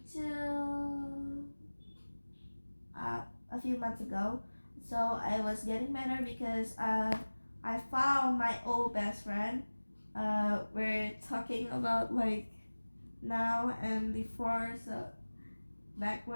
a few months ago. So I was getting better because I found my old best friend. We're talking about like now and before, so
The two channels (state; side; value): inverted; both; correlation -1.00